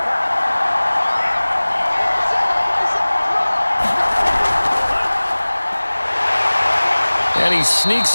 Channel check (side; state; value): both; inverted; correlation -1.00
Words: And he sneaks